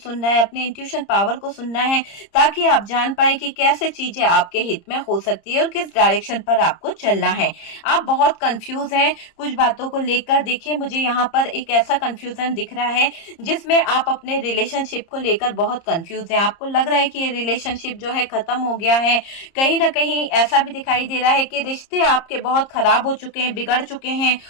है, अपने इंट्यूशन पावर को सुनना है, ताकि आप जान पाए कि कैसे चीजें आपके हित में हो सकती है और किस डायरेक्शन पर आपको चलना है। आप बहुत कंफ्यूज हैं कुछ बातों को लेकर। देखिए, मुझे यहाँ पर एक ऐसा कंफ्यूजन दिख रहा है जिसमें आप अपने रिलेशनशिप को लेकर बहुत कंफ्यूज हैं। आपको लग रहा है कि ये रिलेशनशिप जो है खत्म हो गया है। कहीं ना कहीं ऐसा भी दिखाई दे रहा है कि रिश्ते आपके बहुत खराब हो चुके हैं, बिगड़ चुके हैं।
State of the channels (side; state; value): right; late; 30 ms